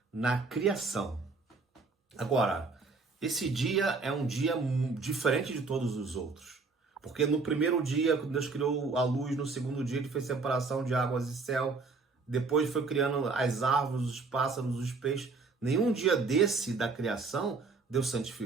na criação. Agora, esse dia é um dia diferente de todos os outros. Porque no primeiro dia, quando Deus criou a luz, no segundo dia ele fez separação de águas e céu, depois foi criando as árvores, os pássaros, os peixes. Nenhum dia desse da criação, Deus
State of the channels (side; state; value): left; quieter; 4.2 dB